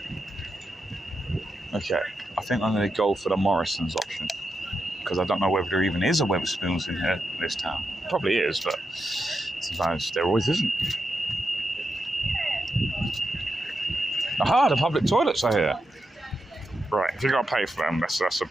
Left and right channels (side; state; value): both; normal; correlation 0.87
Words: Okay, I think I'm going to go for the Morrison's option, because I don't know whether there even is a Wetherspoons in here, this town. Probably is, but sometimes there always isn't. Aha, the public toilets are here. Right, if you got to pay for them, that's a